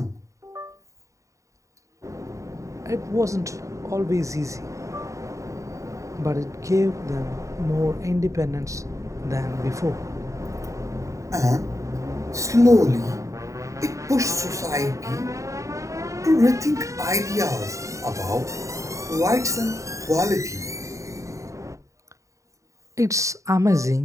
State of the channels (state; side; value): late; left; 0.15 ms